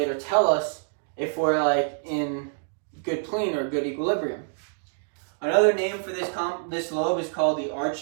or tell us if we're like in good plane or good equilibrium. Another name for this lobe is called the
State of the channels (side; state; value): left; silent; digital silence